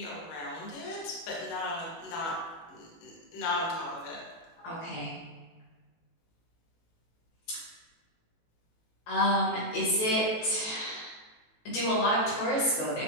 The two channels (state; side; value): late; right; 18 ms